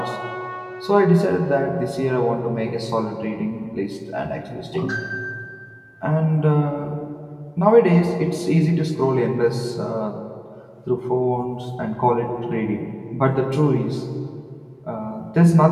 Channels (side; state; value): both; identical; correlation 1.00